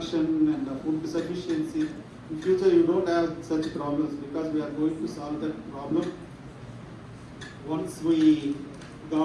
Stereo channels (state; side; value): identical; both; correlation 1.00